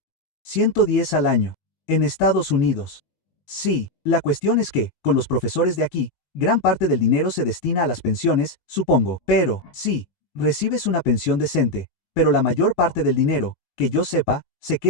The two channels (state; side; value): late; right; 19 ms